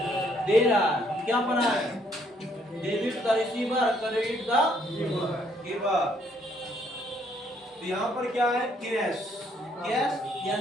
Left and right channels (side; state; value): both; normal; correlation 0.68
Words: दे रहा है। क्या बना है, debit the receiver, credit the giver. तो यहाँ पर क्या है, कैश। कैश